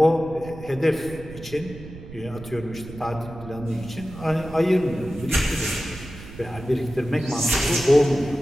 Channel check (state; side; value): noise; right; rumble, 15 dB below the sound